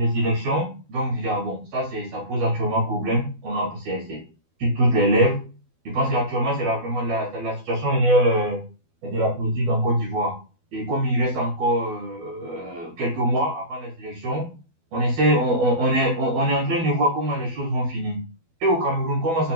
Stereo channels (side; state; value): left; late; 12 ms